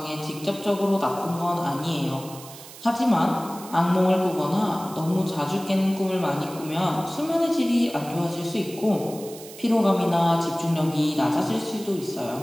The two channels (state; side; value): noise; right; hiss, 16 dB below the sound